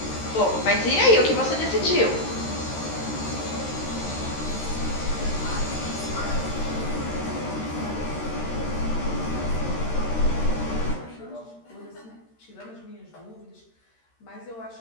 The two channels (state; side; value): late; right; 13 ms